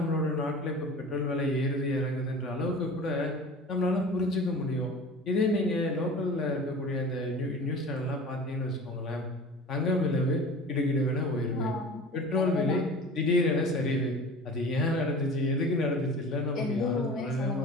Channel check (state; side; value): normal; both; correlation 0.38